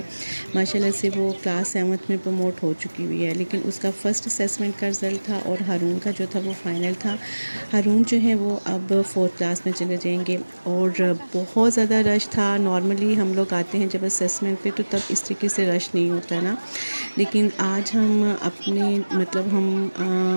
माशाल्लाह से वो क्लास 7th में प्रमोट हो चुकी हुई है, लेकिन उसका फ़र्स्ट असेसमेंट का रिज़ल्ट था और हारून का जो था वो फ़ाइनल था। हारून जो है वो अब 4th क्लास में चले जाएंगे और बहुत ज़्यादा रश था। नॉर्मली हम लोग आते हैं जब असेसमेंट पे तो तब इस तरीके से रश नहीं होता ना, लेकिन आज हम अपने मतलब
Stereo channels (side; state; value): both; inverted; correlation -1.00